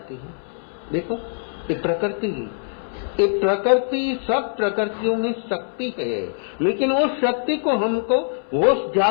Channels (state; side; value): silent; right; 64 dB below the other